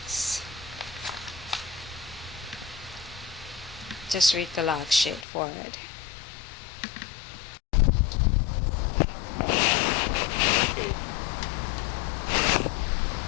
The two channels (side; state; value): right; drops out; at 5.2 s